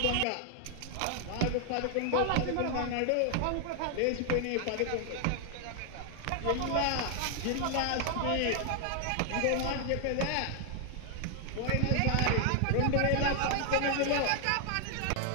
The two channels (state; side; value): different; both; correlation 0.00